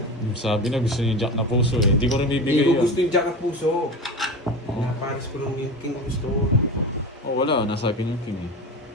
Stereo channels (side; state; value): both; normal; correlation 0.27